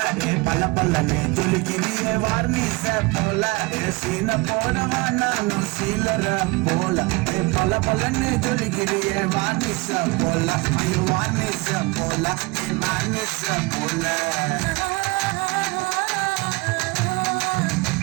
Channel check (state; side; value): quieter; left; 25.1 dB